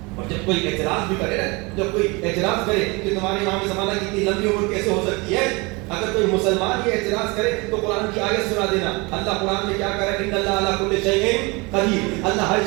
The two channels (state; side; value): quieter; left; 26.6 dB